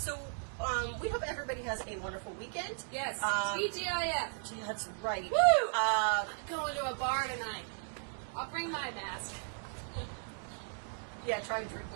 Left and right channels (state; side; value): silent; left; 54 dB below the other